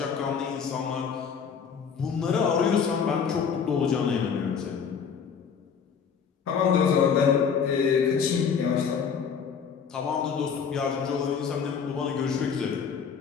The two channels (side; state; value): right; quieter; 6.6 dB